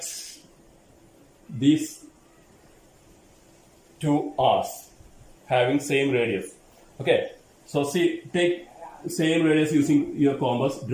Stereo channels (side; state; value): both; identical; correlation 1.00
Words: these 2 arcs having same radius. Okay, so see, take same radius using your compass,